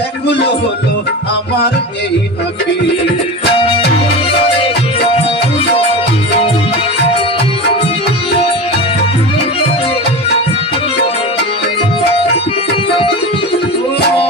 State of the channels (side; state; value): both; normal; correlation 0.26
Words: হলো আমার এই আঁখি।